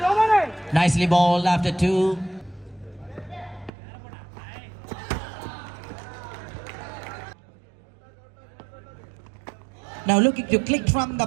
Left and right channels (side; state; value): left; drops out; at 3.7 s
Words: Nicely bowled after 2. Now looking to click from the